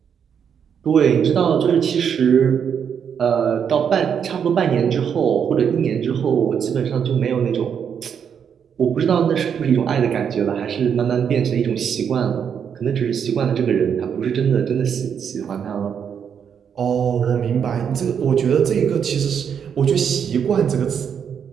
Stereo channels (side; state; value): left; quieter; 7.6 dB